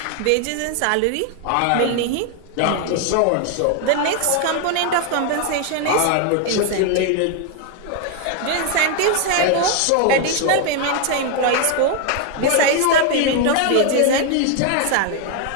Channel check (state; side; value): different; both; correlation 0.00